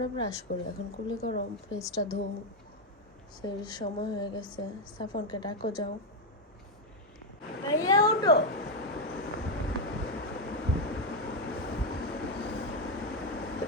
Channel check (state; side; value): normal; both; correlation 0.04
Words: ব্রাশ করো। এখন কুলি করো, ফেসটা ধো। সেই সময় হয়ে গেছে। সাফনকে ডাকো, যাও। ভাইয়া ওঠো।